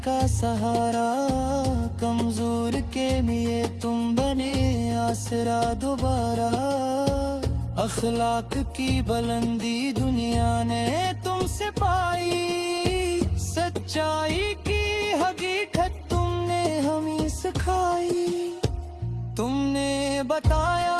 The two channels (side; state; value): both; identical; correlation 1.00